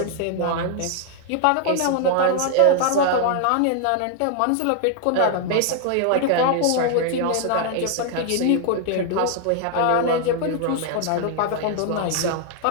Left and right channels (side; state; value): both; different; correlation 0.00